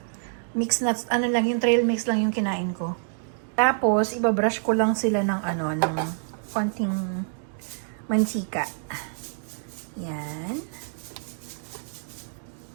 Mix nuts, lang, yung trail mix lang yung kinain ko. Tapos, ibabrush ko lang sila ng ng konting mantika. Yan.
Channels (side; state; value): left; silent; digital silence